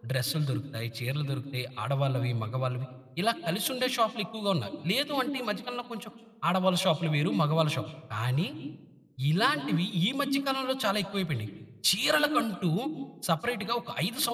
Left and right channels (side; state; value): both; identical; correlation 1.00